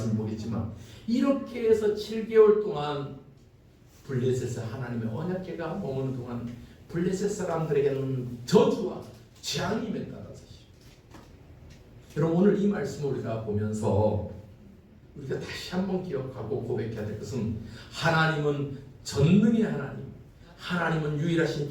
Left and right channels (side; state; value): both; identical; correlation 1.00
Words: 보겠지만 이렇게 해서 7개월 동안 블레셋에 하나님의 언약궤가 머무는 동안 블레셋 사람들에게는 저주와 재앙이 임했다는 사실. 여러분, 오늘 이 말씀을 우리가 보면서 우리가 다시 한번 기억하고 고백해야 될 것은 하나님은 전능의 하나님, 하나님은 유일하신